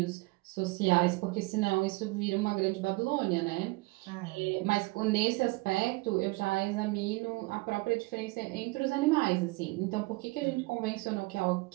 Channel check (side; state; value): left; quieter; 24.0 dB